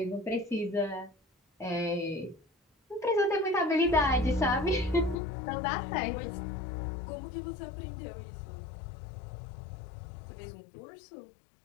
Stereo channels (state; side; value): drops out; right; at 5.2 s